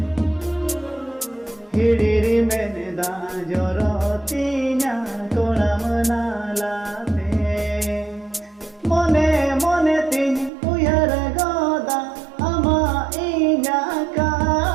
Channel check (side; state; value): left; drops out; at 10.5 s